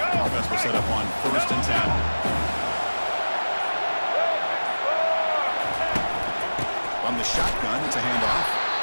Offense will set up on 1st and 10. From the shotgun, it's a handoff.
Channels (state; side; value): inverted; both; correlation -1.00